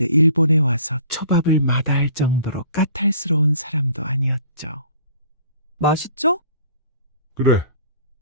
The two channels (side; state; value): both; inverted; correlation -0.51